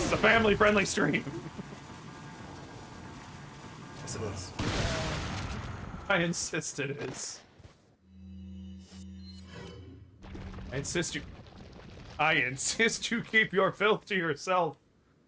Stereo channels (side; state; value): both; identical; correlation 1.00